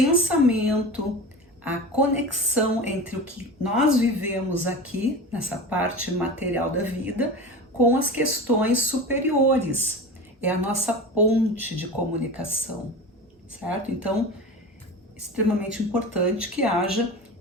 a conexão entre o que nós vivemos aqui, nessa parte material da vida, com as questões superiores. É a nossa ponte de comunicação, certo? Então, extremamente importante que haja,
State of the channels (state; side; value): normal; both; correlation 0.31